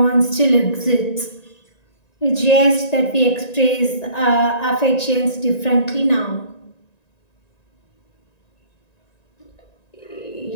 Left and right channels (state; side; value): late; right; 1.9 ms